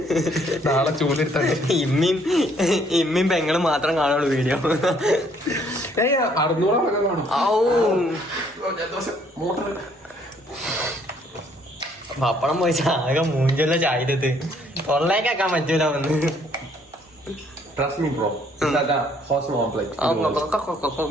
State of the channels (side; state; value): both; normal; correlation 0.64